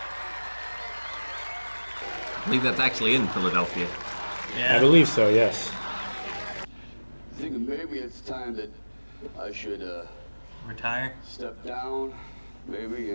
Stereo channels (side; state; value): both; inverted; correlation -1.00